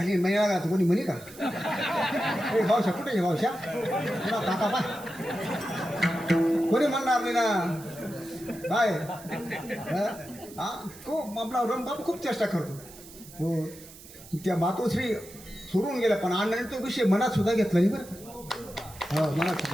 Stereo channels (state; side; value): noise; right; hiss, 18 dB below the sound